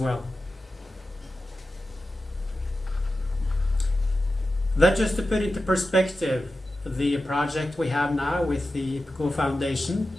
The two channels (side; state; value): both; normal; correlation 0.93